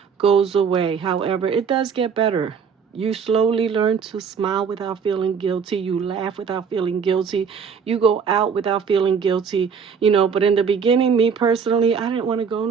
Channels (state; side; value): quieter; left; 6.4 dB